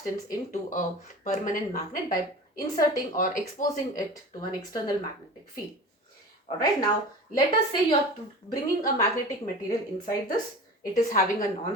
into a permanent magnet by inserting or exposing it to an external magnetic field. Alright, now let us say you are bringing a magnetic material inside this. It is having a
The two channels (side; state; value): both; normal; correlation 0.35